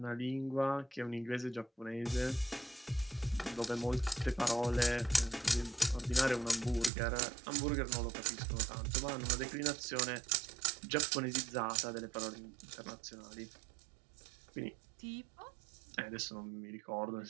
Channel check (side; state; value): left; drops out; at 6.9 s